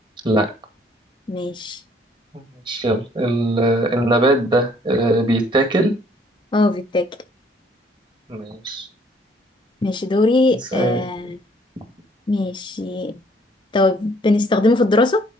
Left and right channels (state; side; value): normal; both; correlation 0.62